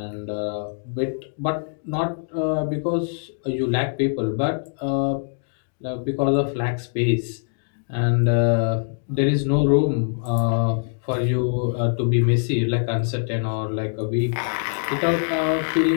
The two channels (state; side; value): silent; right; digital silence